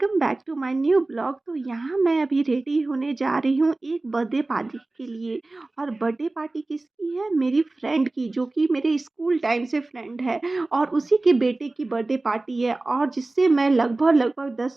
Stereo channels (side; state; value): left; quieter; 3.1 dB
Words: back to my new blog. तो यहाँ मैं अभी रेडी होने जा रही हूँ एक बर्थडे पार्टी के लिए। और बर्थडे पार्टी किसकी है? मेरी फ्रेंड की, जो कि मेरे स्कूल टाइम से फ्रेंड है। और उसी के बेटे की बर्थडे पार्टी है, और जिससे मैं लगभग लगभग